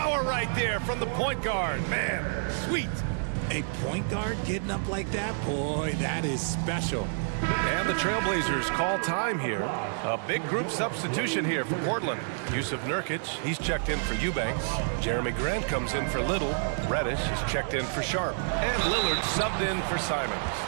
right there from the point guard. Man, sweet. A point guard getting up like that? Boy, that is special. And the Trailblazers call time here. A big group substitution here for Portland. Yusuf Nurkic, he's checked in for Eubanks. Jeremy Grant comes in for Little. Reddish is checked in for Sharp. And Lillard subbed in for Simons.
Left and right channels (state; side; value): silent; left; digital silence